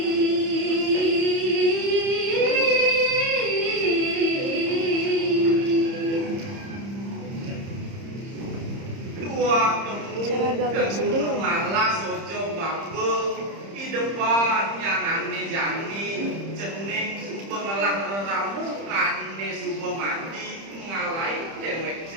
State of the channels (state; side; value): late; left; 30 ms